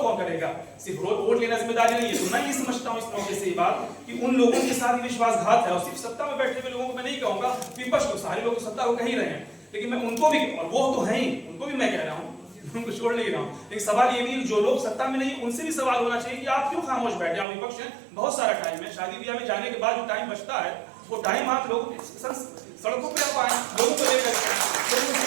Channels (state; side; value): drops out; left; at 17.4 s